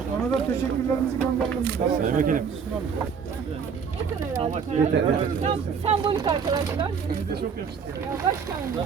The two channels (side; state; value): left; quieter; 6.4 dB